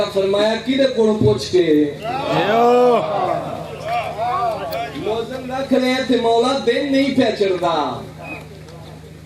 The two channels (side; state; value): both; identical; correlation 1.00